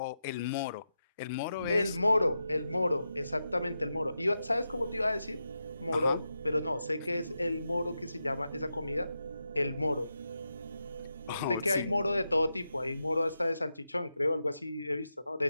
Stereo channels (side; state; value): both; inverted; correlation -0.88